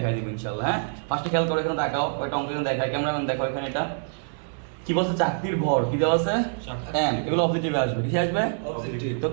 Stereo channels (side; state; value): left; silent; digital silence